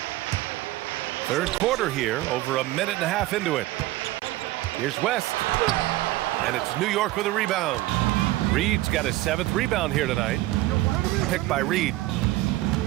Third quarter here, over a minute and a half into it. Here's West. And it's New York with a rebound. Reed's got his 7th rebound here tonight. Picked by Reed.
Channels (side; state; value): left; quieter; 17.4 dB